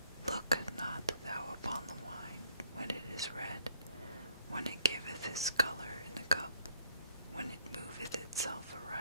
Look not thou upon the wine when it is red, when it giveth its color in the cup, when it moveth itself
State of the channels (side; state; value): both; inverted; correlation -0.65